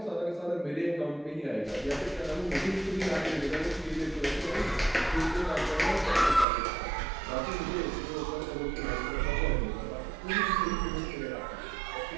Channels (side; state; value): left; drops out; at 6.5 s